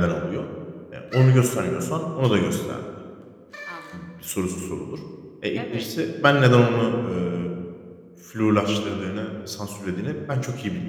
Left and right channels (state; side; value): identical; both; correlation 1.00